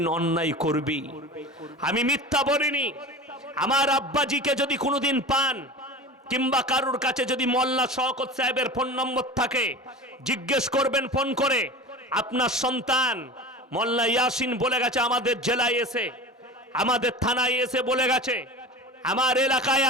অন্যায় করবি। আমি মিথ্যা বলিনি। আমার আব্বাজিকে যদি কোনোদিন পান কিংবা কারুর কাছে যদি মোল্লা শওকত সাহেবের ফোন নম্বর থাকে, জিজ্ঞেস করবেন ফোন করে, আপনার সন্তান মোল্লা ইয়াসিন বলে গেছে আমাদের জেলায় এসে, আমাদের থানায় এসে বলে গেছে আমার এলাকায়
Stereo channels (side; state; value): both; normal; correlation 0.33